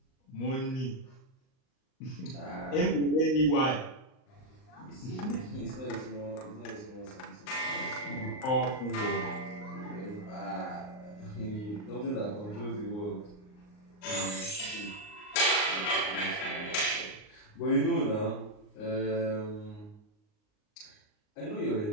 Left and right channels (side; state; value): right; late; 38 ms